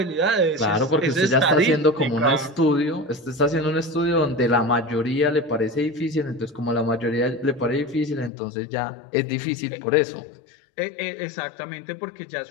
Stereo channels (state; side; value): drops out; right; at 8.3 s